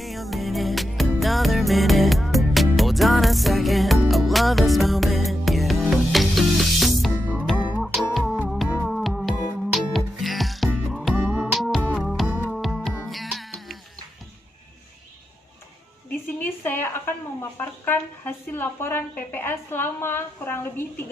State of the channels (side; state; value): both; normal; correlation 0.88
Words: Di sini saya akan memaparkan hasil laporan PPL selama kurang lebih